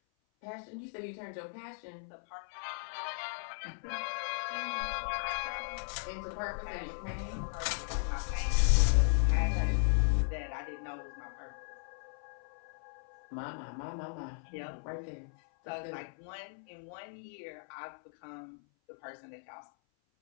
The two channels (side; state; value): right; silent; 54 dB below the other